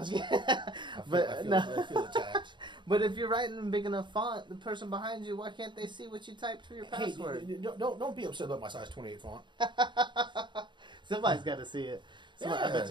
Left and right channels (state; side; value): late; left; 0.23 ms